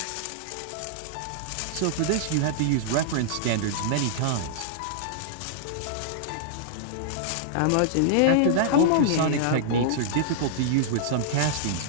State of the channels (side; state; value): both; different; correlation -0.02